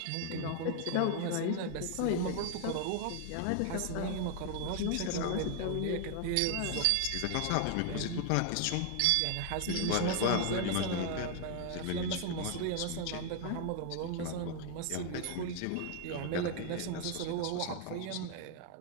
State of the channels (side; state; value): both; different; correlation 0.00